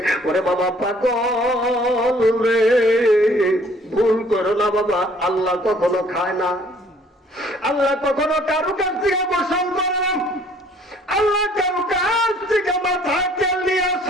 ওরে বাবা পাগল রে, ভুল করো না বাবা, আল্লাহ কখনো খায় না, আল্লাহ কখনো কারো কাছ থেকে গোসল করে না, আল্লাহ কারো কাছ থেকে মাথায় তেল নিয়ে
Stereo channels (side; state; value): both; normal; correlation 0.58